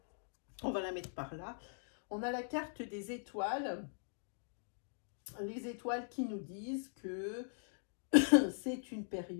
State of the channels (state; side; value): silent; right; digital silence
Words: On va la mettre par là. On a la carte des étoiles. Les étoiles qui nous disent que c'est une